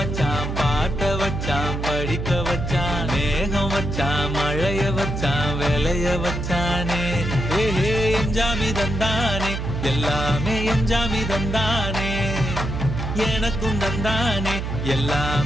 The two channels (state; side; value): noise; right; hum, 3 dB below the sound